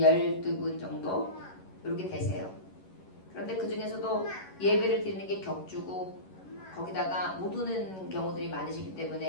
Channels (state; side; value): late; right; 11 ms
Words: 정도 이렇게 되세요. 그런데 그 중에서도 예배를 드리는 게 격주고 거기다가 못 오는 경우들이 많으시기